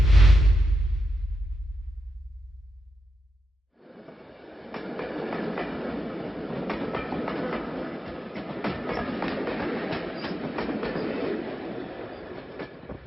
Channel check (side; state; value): both; normal; correlation 0.87